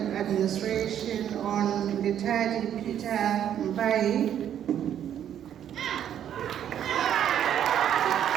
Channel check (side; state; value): left; quieter; 10.0 dB